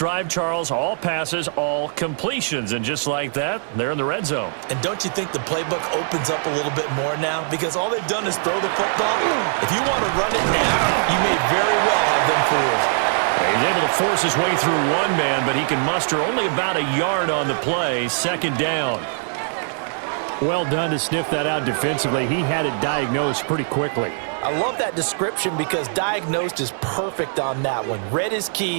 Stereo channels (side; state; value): left; silent; digital silence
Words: Charles. All passes, all completions. And just like that, they're in the red zone. And don't you think the playbook opens up a little bit more now? Because all they've done is throw the football. If you want to run it now, you may very well have them fooled. He's able to force his way through one man, but he can muster only about a yard on the play. 2nd down. Well done to sniff that out defensively. He had it diagnosed pretty quickly. I love that description because diagnosed is perfect on that one. Read his